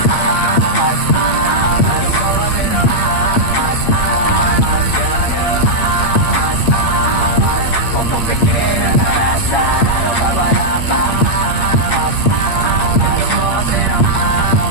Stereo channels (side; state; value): right; late; 8.6 ms